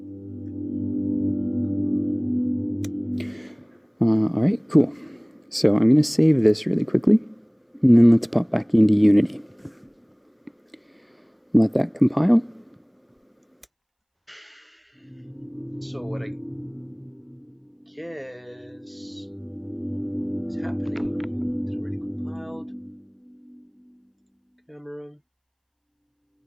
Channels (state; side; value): identical; both; correlation 1.00